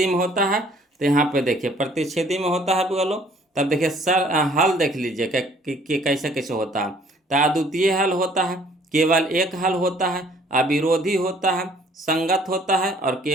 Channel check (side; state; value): both; normal; correlation 0.58